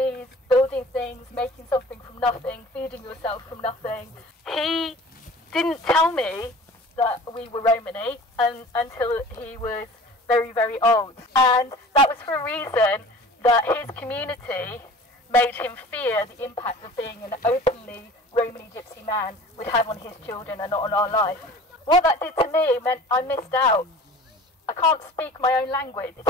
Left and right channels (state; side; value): normal; both; correlation 0.43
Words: building things, making something from nothing, feeding yourself from nothing. He didn't tell me that we were Romany until he was very, very old. And that was for a reason that his community made him fear the impact of being an openly Romany Gypsy man would have on his children and not on our life. What that did to me meant I missed out. I can't speak my own language. It